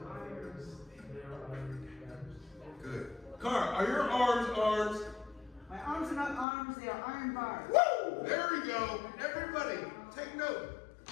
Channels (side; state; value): right; drops out; at 6.5 s